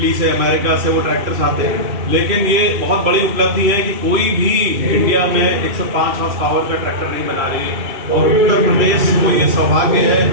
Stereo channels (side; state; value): left; late; 2.6 ms